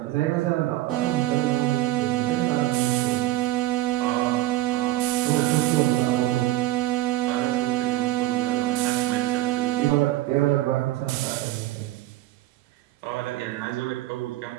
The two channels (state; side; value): quieter; left; 16.3 dB